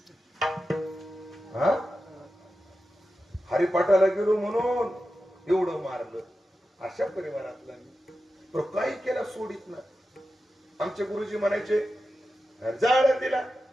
हरिपाठाला गेलो म्हणून एवढं मारलं. अशा परिवारातला मी काही केला सोडित ना. आमचे गुरुजी म्हणायचे जा तिला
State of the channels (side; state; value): both; normal; correlation 0.91